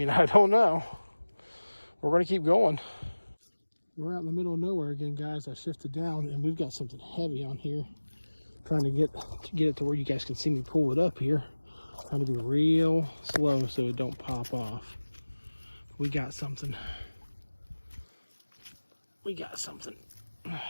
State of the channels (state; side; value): inverted; both; correlation -1.00